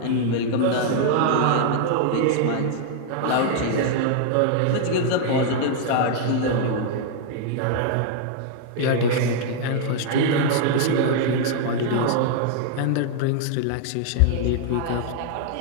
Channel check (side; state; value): both; different; correlation 0.00